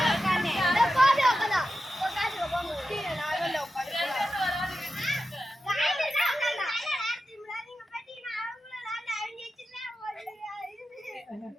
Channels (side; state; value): both; normal; correlation 0.91